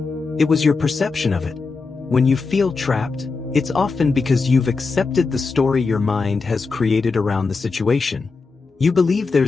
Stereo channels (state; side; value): quieter; right; 4.3 dB